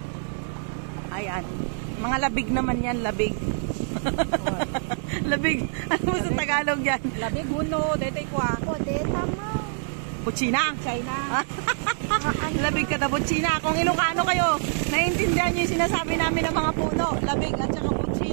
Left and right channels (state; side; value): silent; left; 60 dB below the other